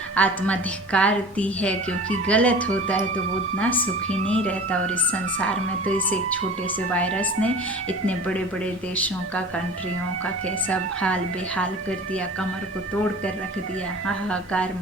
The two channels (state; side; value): normal; both; correlation 0.40